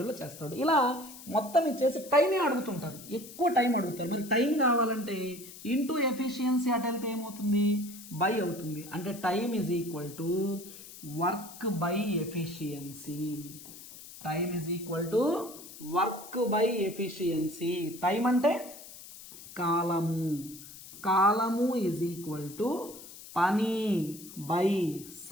చేస్తాడు. ఇలా మొత్తం ఇచ్చేసి టైమే అడుగుతుంటారు, ఎక్కువ టైం అడుగుతారు. మరి టైం కావాలంటే ఇంటూ ఎఫిషియన్సీ అటు వెళ్తే ఏమవుతుంది, బై అవుతుంది. అంటే time = work by efficiency. Time అంటే కాలము పని బై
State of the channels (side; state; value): left; noise; hiss, 16 dB below the sound